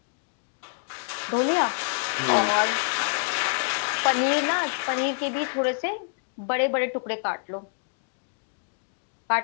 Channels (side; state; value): right; silent; digital silence